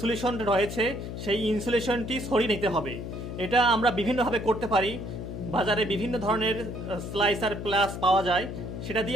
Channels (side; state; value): left; noise; hum, 7 dB below the sound